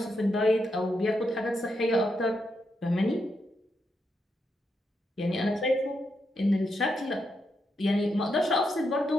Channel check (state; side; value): normal; both; correlation 0.82